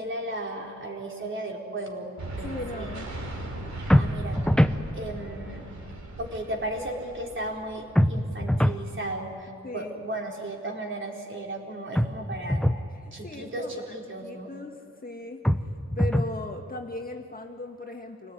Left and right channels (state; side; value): normal; both; correlation 0.78